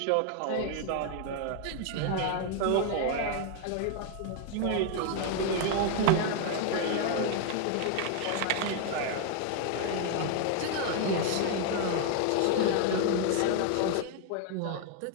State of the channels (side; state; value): both; different; correlation 0.00